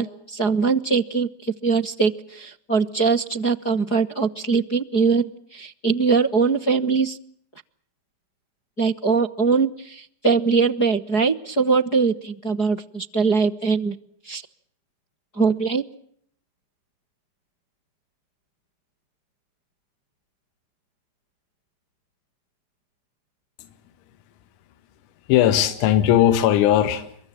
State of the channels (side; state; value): right; late; 4.8 ms